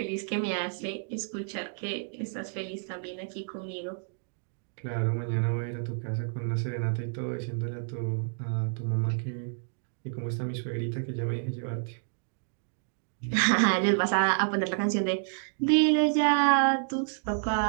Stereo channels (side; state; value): left; silent; digital silence